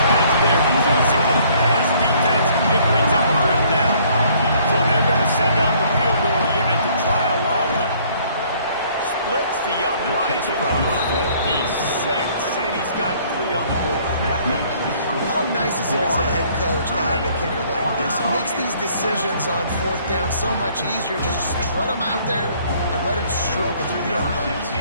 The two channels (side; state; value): both; inverted; correlation -0.60